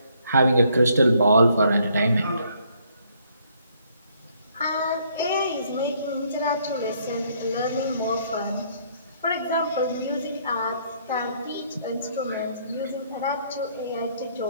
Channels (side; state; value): both; inverted; correlation -0.67